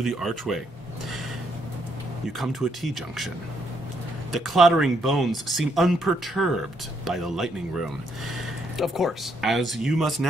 the archway, you come to a T-junction. The clattering bones seem unperturbed by the lightning room, Of course. as you must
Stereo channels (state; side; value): normal; both; correlation 0.74